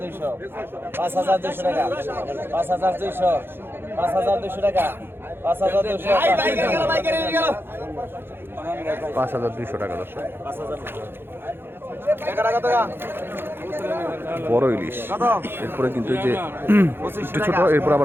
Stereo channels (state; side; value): late; left; 0.10 ms